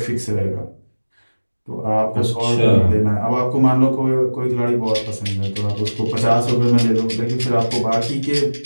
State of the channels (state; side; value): inverted; both; correlation -1.00